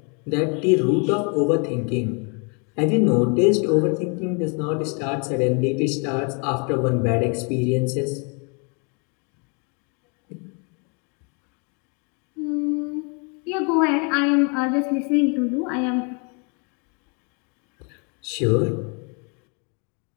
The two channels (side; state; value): right; quieter; 35.5 dB